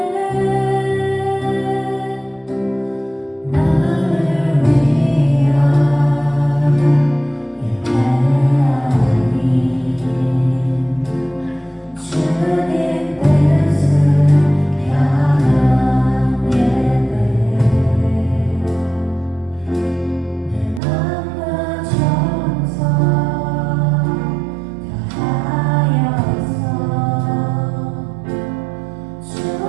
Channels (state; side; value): drops out; left; at 20.8 s